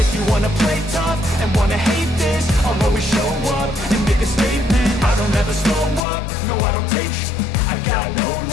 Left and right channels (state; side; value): drops out; right; at 6.0 s